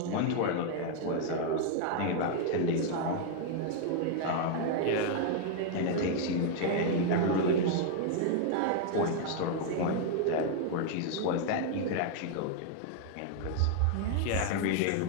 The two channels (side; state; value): both; different; correlation 0.00